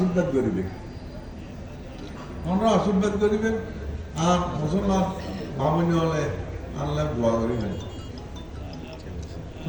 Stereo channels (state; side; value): identical; both; correlation 1.00